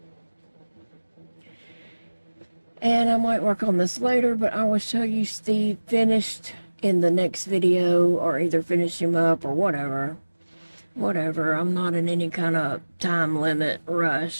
And I might work on this later, but I will show you Steve finished in the next video, or either finish him up or whatever. Whatever, I'm not in any kind of time limit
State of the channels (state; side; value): inverted; both; correlation -1.00